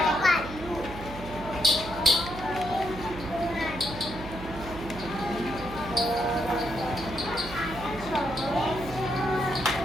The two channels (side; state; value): right; noise; hum, 12 dB below the sound